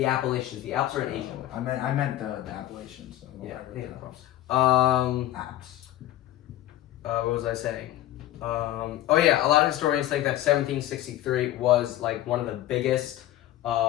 Appalachians. The Alps are in Asia. I meant the Appalachians. So Yeah. Alps. What was I saying? A lot of historians think that 1763 was like one of the biggest,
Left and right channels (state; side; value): quieter; right; 14.0 dB